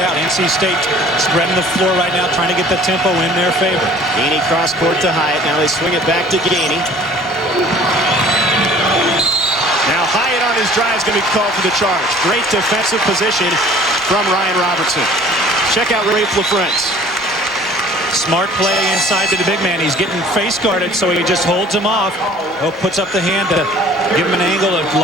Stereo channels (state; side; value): normal; both; correlation 0.50